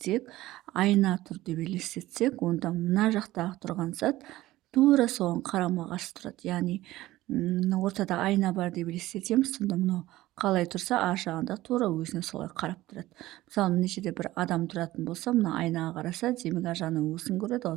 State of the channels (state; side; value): quieter; left; 16.6 dB